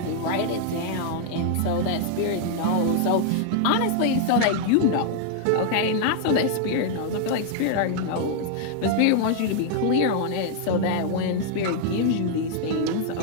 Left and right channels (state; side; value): different; both; correlation 0.00